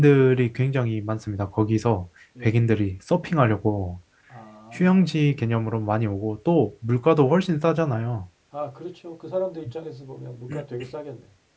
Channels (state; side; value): identical; both; correlation 1.00